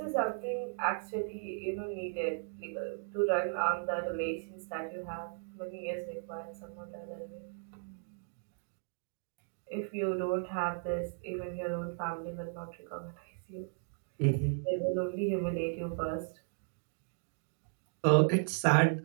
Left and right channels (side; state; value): left; silent; digital silence